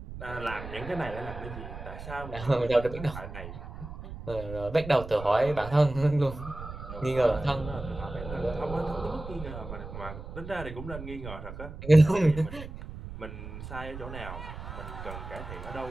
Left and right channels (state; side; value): noise; right; rumble, 11 dB below the sound